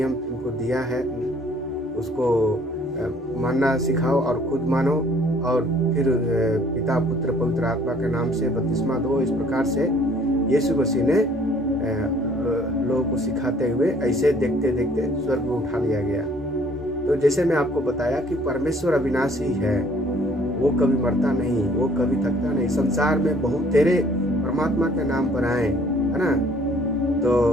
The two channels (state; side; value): normal; both; correlation 0.58